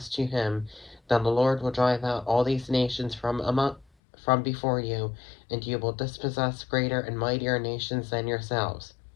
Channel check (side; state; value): right; drops out; at 3.9 s